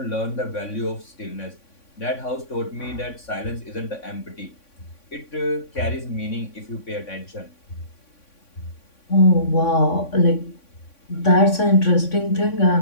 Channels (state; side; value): late; right; 3.6 ms